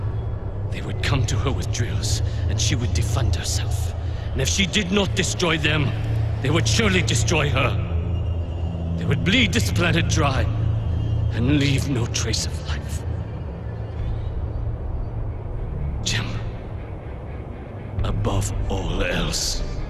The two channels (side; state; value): both; identical; correlation 1.00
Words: They would come to her with drills, and she would defend herself. And if she did not destroy them, they would surely destroy her. They would bleed this planet dry, and leave no trace of life. Jim, above all else,